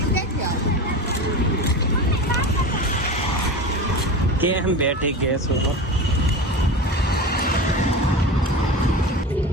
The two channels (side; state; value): both; normal; correlation 0.29